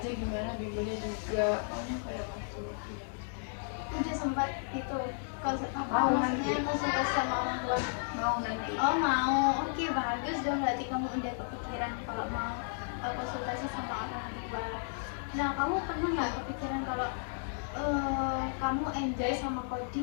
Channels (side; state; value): right; silent; digital silence